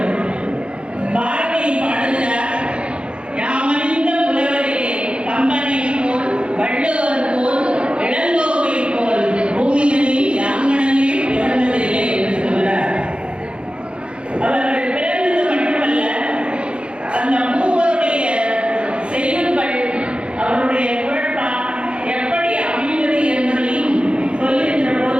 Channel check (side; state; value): left; late; 0.057 ms